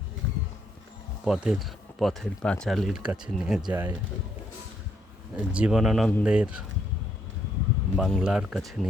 পথের পাঁচালীর কাছে নিয়ে যায়, জীবনানন্দের বাংলার কাছে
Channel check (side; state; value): both; normal; correlation 0.73